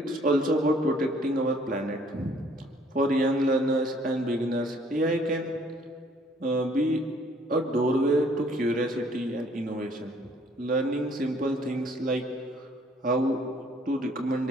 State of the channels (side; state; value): both; normal; correlation 0.61